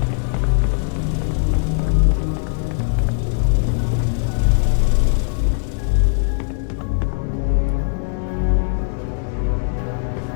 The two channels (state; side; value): silent; right; digital silence